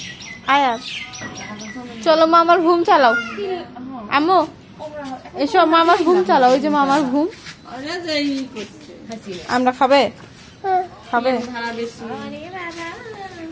আয়াত চলো মামার ঘুম চালাও। আম্মু এসো, মামার ঘুম চালাও। ওই যে মামার ঘুম। আমরা খাবে খাবে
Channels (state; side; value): identical; both; correlation 1.00